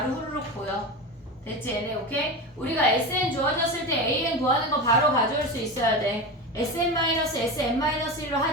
후루룩 보여. 됐지 얘네? 오케이? 우리가 sn 주어졌을 때 an 구하는 거 바로 가져올 수 있어야 돼. sn-sn-1로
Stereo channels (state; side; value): normal; both; correlation 0.23